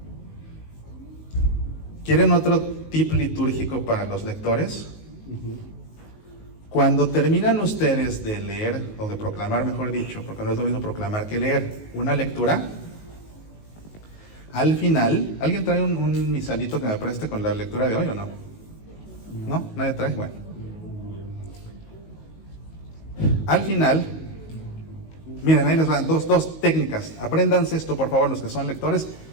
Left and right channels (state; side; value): late; right; 19 ms